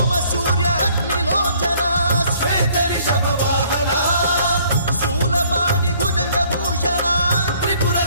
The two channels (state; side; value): inverted; both; correlation -0.60